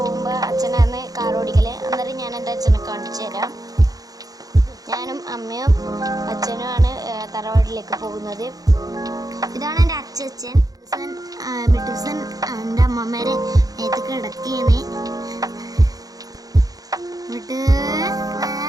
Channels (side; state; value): left; late; 0.18 ms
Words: അച്ഛനാണ് കാർ ഓടിക്കല്. അന്നേരം ഞാൻ എൻ്റെ അച്ഛനെ കാണിച്ചു തരാം. ഞാനും അമ്മയും അച്ഛനുമാണ് തറവാട്ടിലേക്ക് പോകുന്നത്. ഇതാണ് എൻ്റെ അച്ഛൻ. മിട്ടുസൻ എൻ്റെ അമ്മമ്മേരെ നേരത്തെ കിടക്കുകയാണ്.